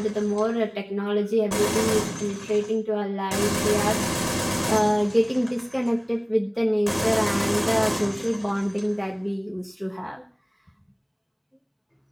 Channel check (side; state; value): both; identical; correlation 1.00